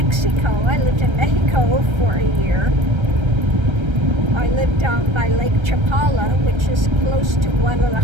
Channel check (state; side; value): late; left; 1.3 ms